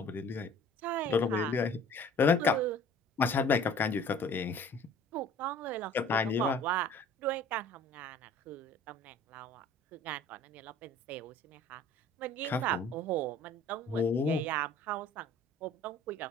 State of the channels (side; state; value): both; normal; correlation 0.49